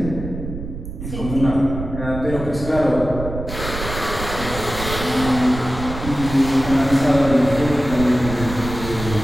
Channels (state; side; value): noise; right; rumble, 8 dB below the sound